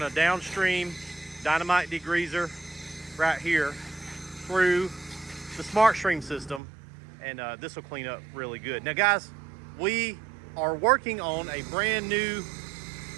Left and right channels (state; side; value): drops out; left; at 6.6 s